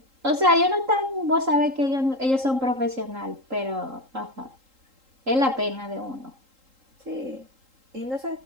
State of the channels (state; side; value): late; left; 3.8 ms